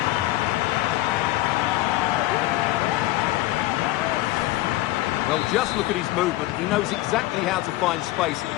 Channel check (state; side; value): quieter; right; 17.0 dB